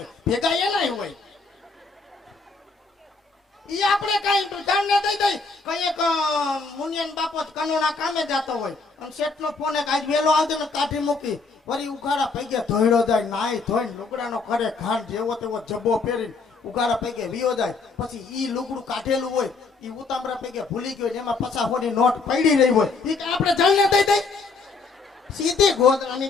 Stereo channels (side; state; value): right; quieter; 4.2 dB